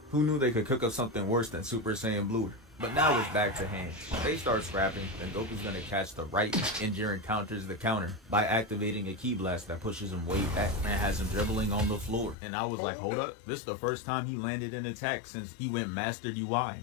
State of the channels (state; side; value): drops out; right; at 12.4 s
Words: Who knew they could cook up something worse than Super Saiyan Blue? But now it's back to hand. They start scrapping, then Goku's gonna catch the right, and Jiren counters the counter by activating a ki blast that pushes him way back and has him dribbling on the floor. And I was like, hold up, this is the first time he landed an attack since he went Master UI.